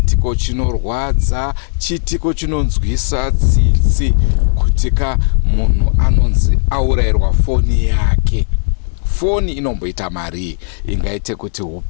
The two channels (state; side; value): silent; right; digital silence